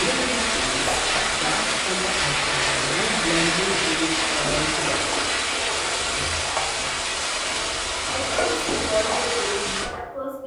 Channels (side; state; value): both; identical; correlation 1.00